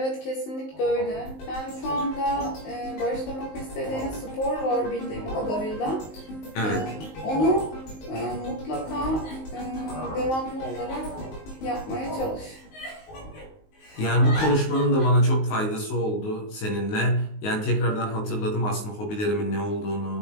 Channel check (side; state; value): right; late; 19 ms